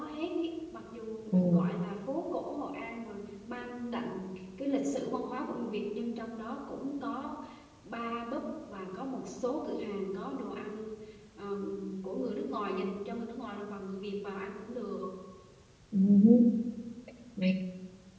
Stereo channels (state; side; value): identical; both; correlation 1.00